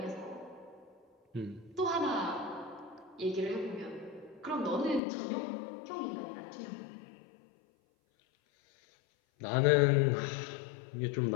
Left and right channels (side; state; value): right; drops out; at 5.0 s